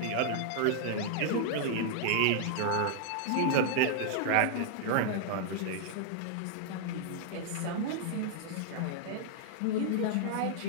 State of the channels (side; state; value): both; different; correlation -0.01